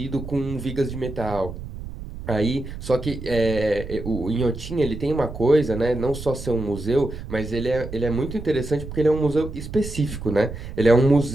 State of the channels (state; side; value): noise; right; rumble, 10 dB below the sound